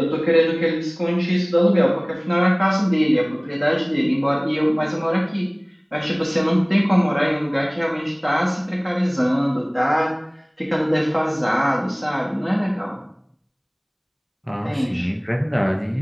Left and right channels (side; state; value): both; identical; correlation 1.00